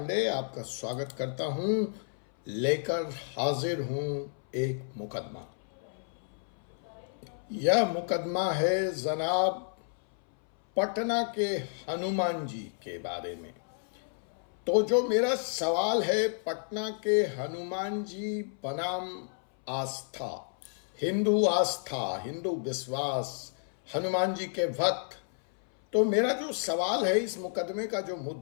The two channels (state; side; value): silent; right; 57 dB below the other